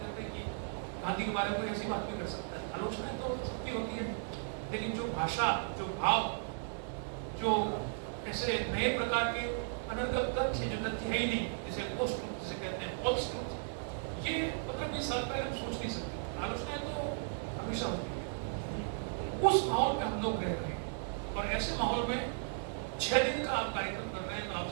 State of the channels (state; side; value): silent; left; digital silence